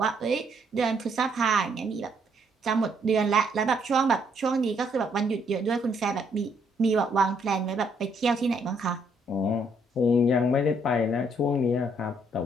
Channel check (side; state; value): both; normal; correlation 0.70